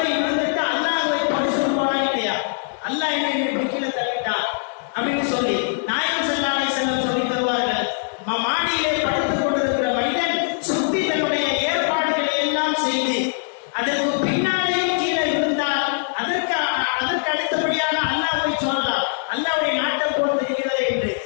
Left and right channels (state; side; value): silent; right; digital silence